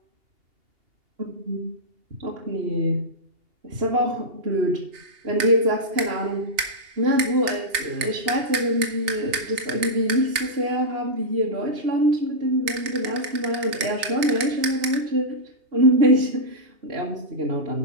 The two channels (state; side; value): late; left; 2.8 ms